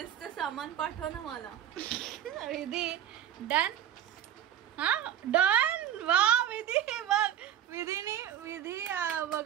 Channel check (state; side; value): quieter; left; 10.4 dB